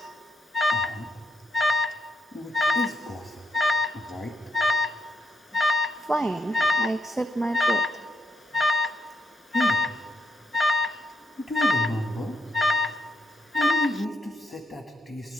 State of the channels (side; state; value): both; normal; correlation 0.79